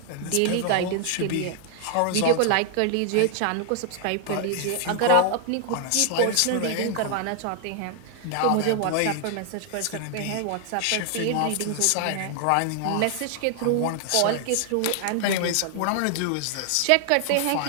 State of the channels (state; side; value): different; both; correlation 0.00